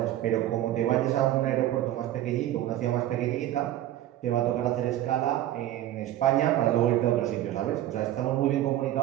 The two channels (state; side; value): quieter; left; 13.2 dB